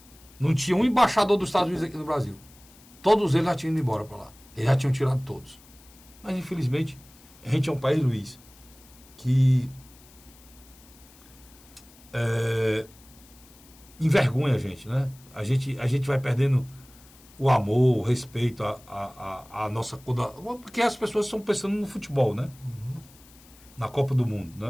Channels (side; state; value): left; noise; hiss, 25 dB below the sound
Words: Não tinha um embaixador dos Estados Unidos aqui no Brasil. Todos eles já tinham ido embora para lá. Eles já tinham tirado todos. Mas, infelizmente, a gente é um país, Luiz, que envergonha a gente, né? A gente vai perdendo o amor, o respeito, a nossa... Porque as pessoas estão pensando no futebol, né? Uhum. Na Copa do Mundo,